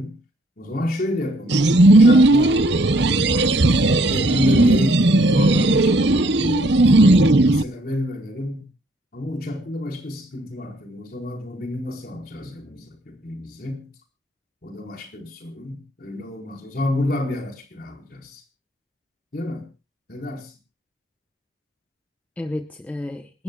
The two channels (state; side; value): normal; both; correlation 0.66